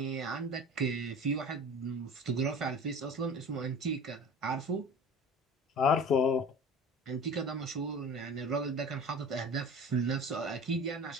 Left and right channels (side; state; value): both; normal; correlation 0.38